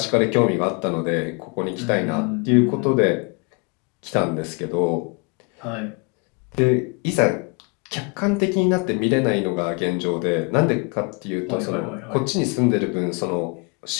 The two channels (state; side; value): quieter; right; 32.6 dB